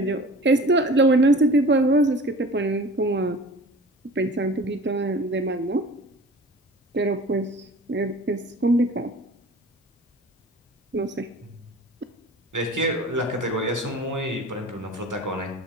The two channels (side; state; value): both; normal; correlation 0.42